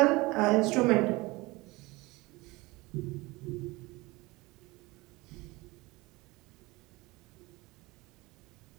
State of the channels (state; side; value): quieter; left; 22.3 dB